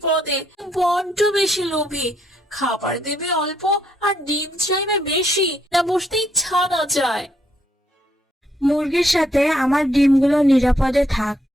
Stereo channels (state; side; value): normal; both; correlation 0.73